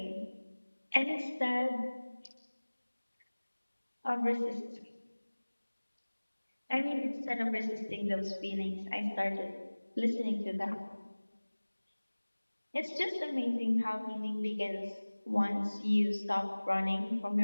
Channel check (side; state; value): both; inverted; correlation -1.00